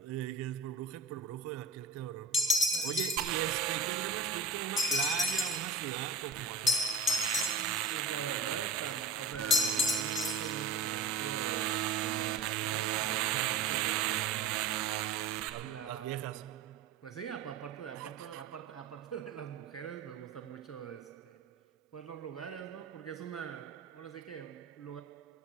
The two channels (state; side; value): quieter; left; 3.9 dB